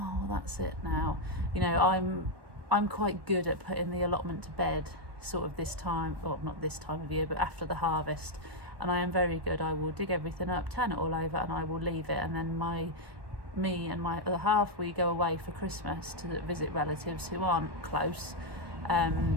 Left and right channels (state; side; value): late; left; 1.1 ms